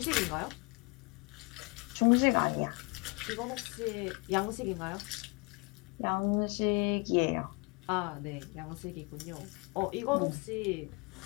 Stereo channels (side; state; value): right; quieter; 28.7 dB